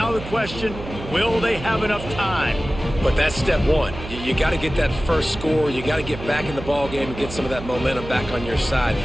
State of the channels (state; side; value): noise; right; hum, 11 dB below the sound